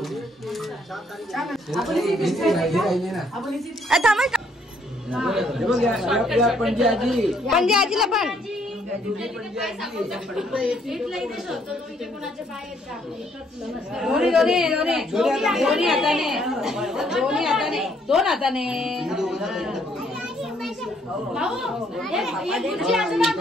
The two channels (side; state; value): both; normal; correlation 0.68